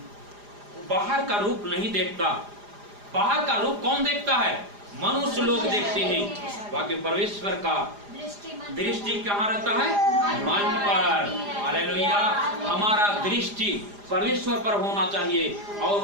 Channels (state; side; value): late; left; 4.9 ms